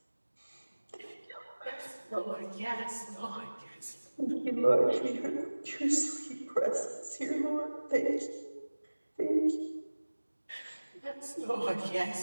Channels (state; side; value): inverted; both; correlation -1.00